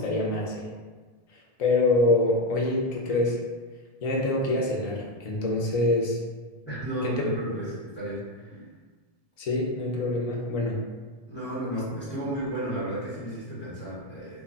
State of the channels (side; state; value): right; late; 1.7 ms